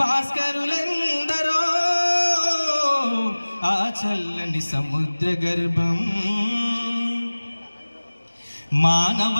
భాస్కరులెందరో ఆ చల్లని సముద్ర గర్భం మానవ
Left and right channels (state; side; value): inverted; both; correlation -1.00